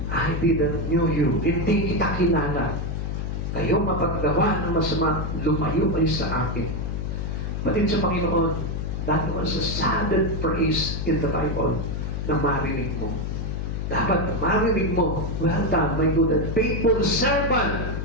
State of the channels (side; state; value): left; noise; hum, 3 dB below the sound